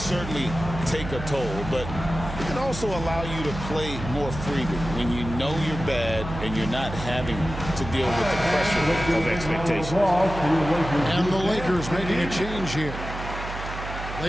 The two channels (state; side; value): noise; right; hum, 9 dB below the sound